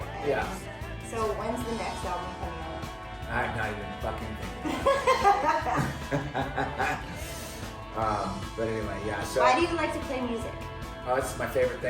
And Yeah. So when's the next album coming out? I'm not even fucking thinking. But anyway, yeah. So Why do you like to play music? oh, it's my favorite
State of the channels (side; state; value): both; identical; correlation 1.00